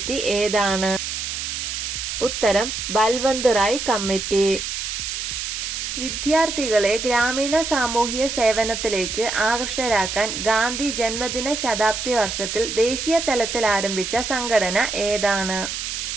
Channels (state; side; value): noise; right; hiss, 4 dB below the sound